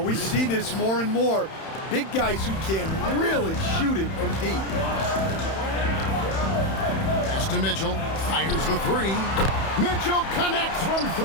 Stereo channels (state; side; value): late; right; 31 ms